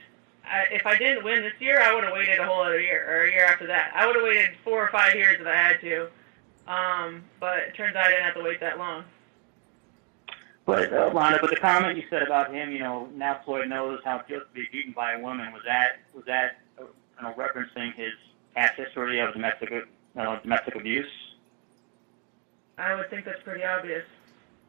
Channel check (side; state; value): left; quieter; 37.7 dB